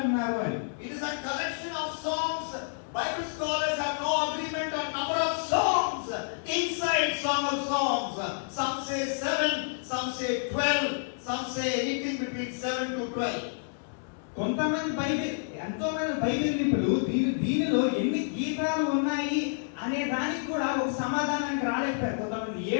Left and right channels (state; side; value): silent; right; digital silence